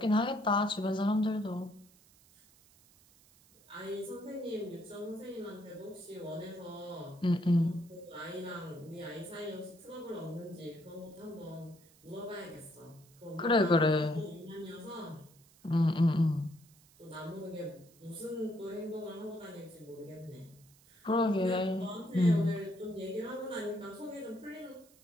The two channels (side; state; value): right; noise; hiss, 27 dB below the sound